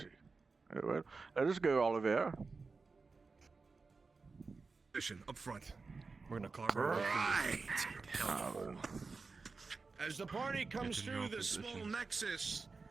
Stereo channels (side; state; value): left; quieter; 4.2 dB